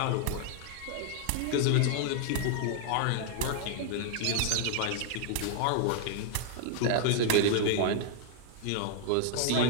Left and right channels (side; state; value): both; different; correlation 0.00